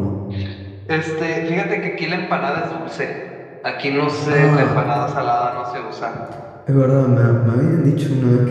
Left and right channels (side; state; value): both; identical; correlation 1.00